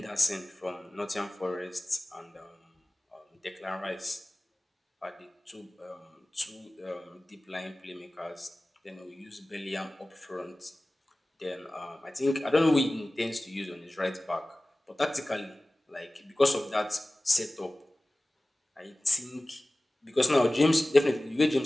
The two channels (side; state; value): both; normal; correlation 0.97